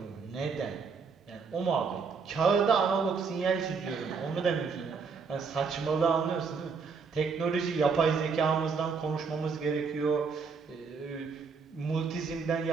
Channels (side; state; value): left; quieter; 5.3 dB